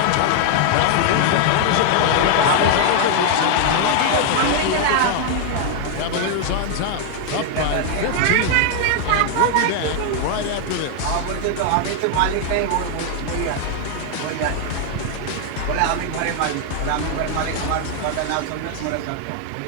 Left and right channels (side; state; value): both; different; correlation 0.00